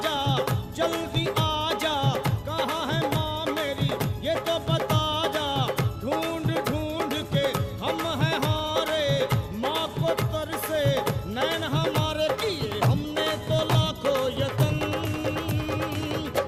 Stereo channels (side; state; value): both; identical; correlation 1.00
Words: जल्दी आजा, कहाँ है माँ मेरी ये तो बता जा। ढूंढ ढूंढ के हम हैं हारे, माँ को तरसे नैन हमारे किए हमने तो लाखों यतन।